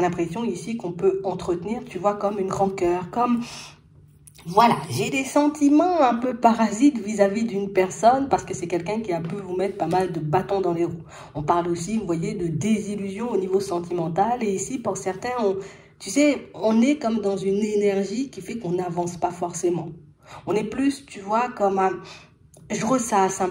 l'impression ici qu'on peut entretenir, tu vois, comme une rancœur, comme... Voilà, j'ai des sentiments un peu parasites vis-à-vis d'une personne parce que c'est quelqu'un qui a pu vous mettre pas mal de bâtons dans les roues. On parle aussi, vous voyez, de désillusion au niveau sentimental. Et ici, pour certains, tu sais, on est comme dans une énergie qui fait qu'on n'avance pas forcément. On est plus, tu vois, comme je ressasse un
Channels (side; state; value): both; identical; correlation 1.00